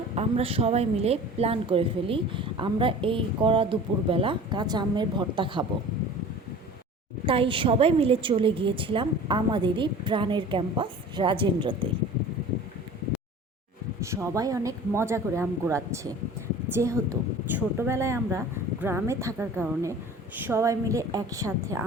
আমরা সবাই মিলে প্ল্যান করে ফেলি আমরা এই কড়া দুপুরবেলা কাঁচা আমের ভর্তা খাবো। তাই সবাই মিলে চলে গিয়েছিলাম আমাদেরই প্রাণের ক্যাম্পাস রাজেন্দ্রতে। সবাই অনেক মজা করে আম কুড়াচ্ছে। যেহেতু ছোটোবেলায় আমরা গ্রামে থাকার কারণে সবাই মিলে একসাথে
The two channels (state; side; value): normal; both; correlation 0.41